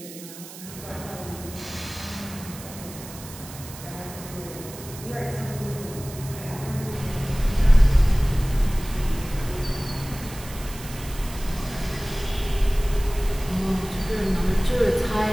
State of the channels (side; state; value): right; noise; hiss, 15 dB below the sound